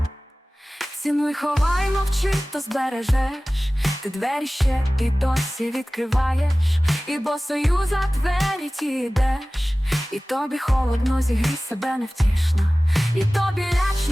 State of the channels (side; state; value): both; normal; correlation 0.98